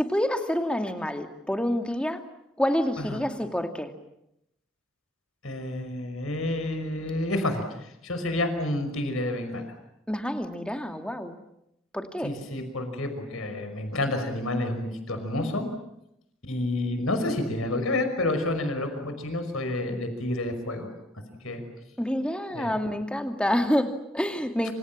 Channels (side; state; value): both; normal; correlation 0.64